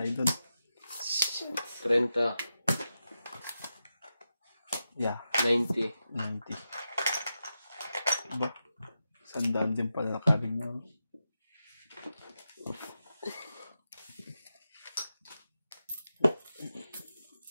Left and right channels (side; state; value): both; inverted; correlation -0.90